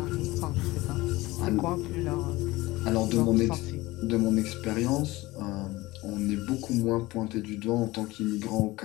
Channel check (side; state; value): right; quieter; 19.7 dB